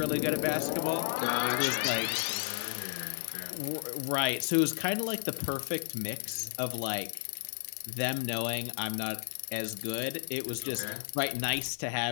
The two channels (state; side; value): silent; right; digital silence